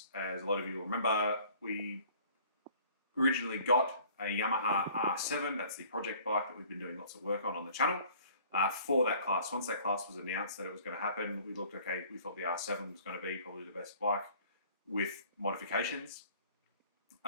As a lot of you will remember, we originally got a Yamaha R7. That's the project bike that we've been doing lots of work on the channel. For that class. Once that class was announced that it was going to happen, we looked, okay, we thought the R7 was going to be probably the best bike with modifications.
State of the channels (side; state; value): both; inverted; correlation -0.52